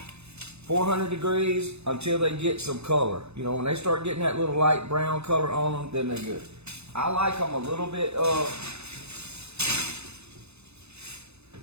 400 degrees until they get some color. When they start getting that little light brown color on them, then they're good. I like them a little bit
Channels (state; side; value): late; left; 0.80 ms